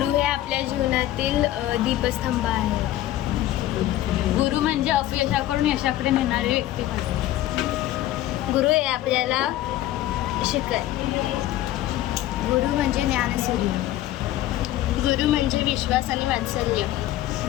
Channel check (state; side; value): quieter; right; 14.3 dB